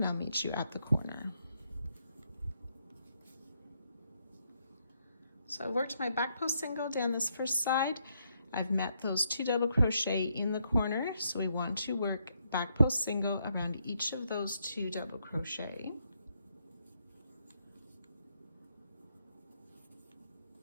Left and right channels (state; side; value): inverted; both; correlation -0.76